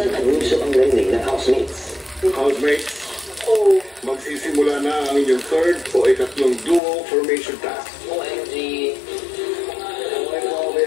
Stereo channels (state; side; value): drops out; right; at 6.8 s